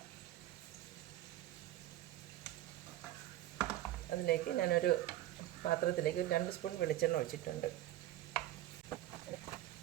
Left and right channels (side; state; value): left; quieter; 14.5 dB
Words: അതിലേക്ക് ഞാനൊരു പാത്രത്തിലേക്ക് 2 സ്പൂൺ വെളിച്ചെണ്ണ ഒഴിച്ചിട്ടുണ്ട്.